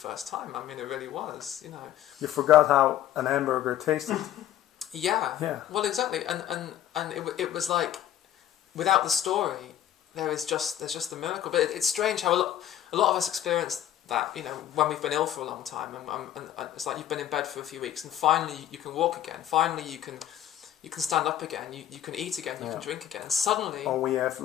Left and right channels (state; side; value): quieter; right; 11.6 dB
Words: time. I mean, it really was. You forgot how an hamburger tasted. Yeah. Well, exactly, and it was like, without the story, there's just the miracle. But it's strange how a lot of us experience that. When we've been ill for a long time, and it's like you've been in bed for a few weeks, and finally you can walk again. Finally you can stand up again. You can eat again. You can drink again. And suddenly. Or we